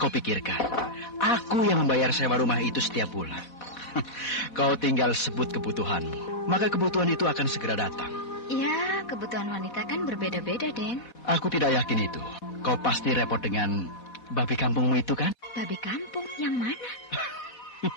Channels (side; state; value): right; late; 4.2 ms